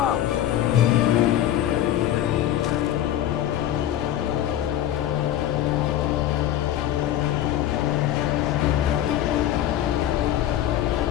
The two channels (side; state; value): right; quieter; 11.8 dB